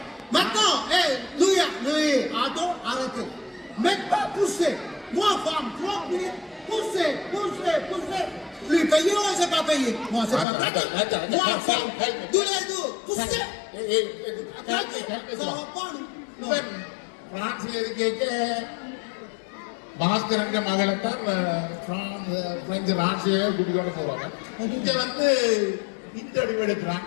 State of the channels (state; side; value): drops out; right; at 10.5 s